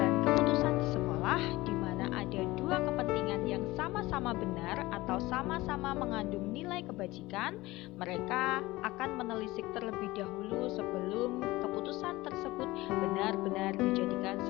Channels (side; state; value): right; quieter; 19.5 dB